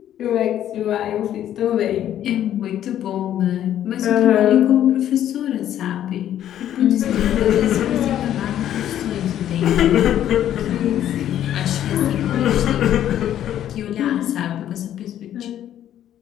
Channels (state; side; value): quieter; right; 11.2 dB